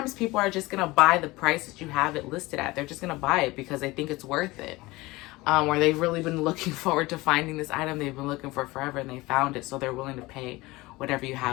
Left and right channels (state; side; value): quieter; right; 21.0 dB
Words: people are just going to buy the price that you have it listed at. They're just going to buy it because they think it's worth it. where they've really been looking forward to finding this item they've been looking for forever, and they found it, so they're willing to pay whatever you